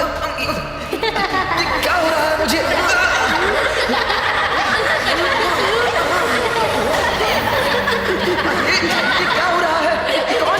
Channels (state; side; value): noise; right; hum, 24 dB below the sound